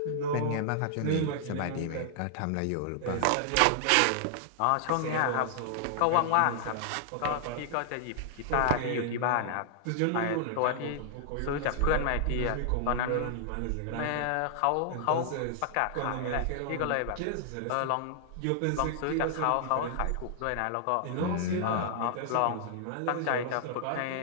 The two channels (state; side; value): different; both; correlation -0.01